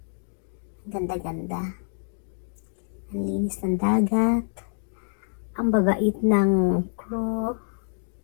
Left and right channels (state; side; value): silent; right; digital silence